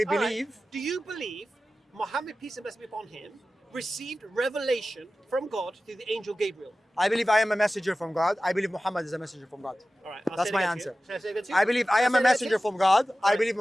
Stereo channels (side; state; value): both; normal; correlation 0.95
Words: All right. believe. Do you believe Muhammad, peace and blessing be upon him, received revelation from God through the angel Gabriel? I believe I am a messenger from God. I believe Muhammad is a messenger from God. All right. That's my again answer. to you. Shall I say it again to you? I believe I Shall am say a it again to messenger you? from God. I Right, believe